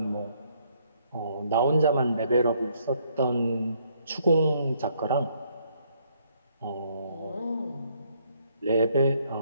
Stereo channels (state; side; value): inverted; both; correlation -0.69